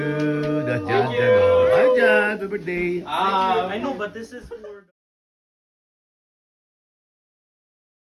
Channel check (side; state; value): both; identical; correlation 1.00